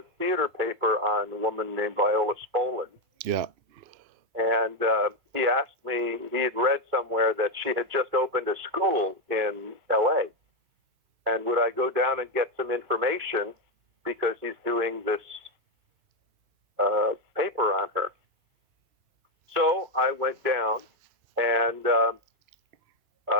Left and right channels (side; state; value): left; late; 2.8 ms